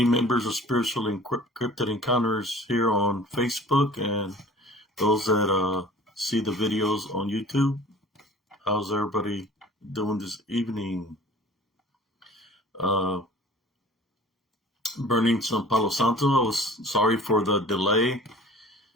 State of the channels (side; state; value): both; normal; correlation 0.46